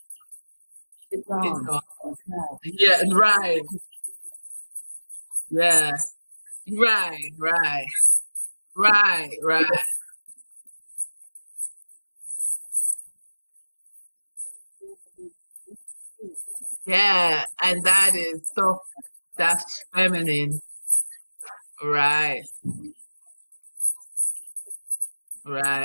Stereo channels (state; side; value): inverted; both; correlation -1.00